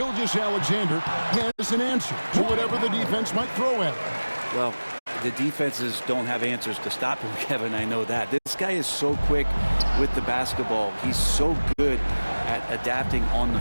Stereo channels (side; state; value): both; inverted; correlation -1.00